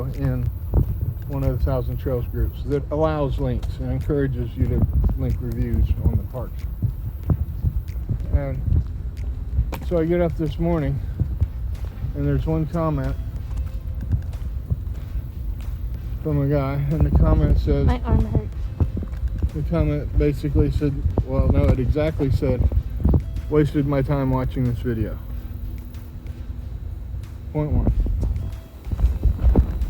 in one of the 1,000 Trails groups that allows links and encourages you to link reviews on the parks. And so I get up this morning and there's one comment from a guy, and the comment says, my arm hurts. The comment basically said, well, no, it exactly said, wasted my time watching this video. Point one.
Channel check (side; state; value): both; identical; correlation 1.00